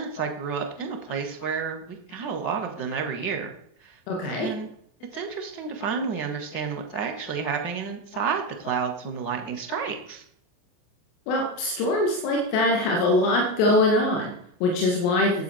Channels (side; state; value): right; late; 28 ms